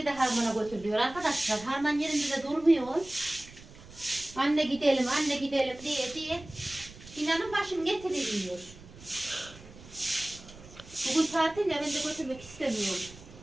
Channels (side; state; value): right; noise; rumble, 19 dB below the sound